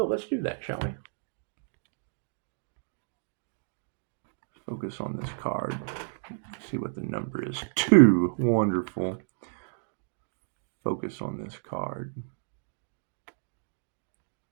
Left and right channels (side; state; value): left; silent; digital silence